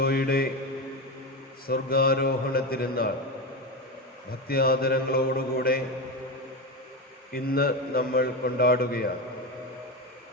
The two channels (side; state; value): both; normal; correlation 0.17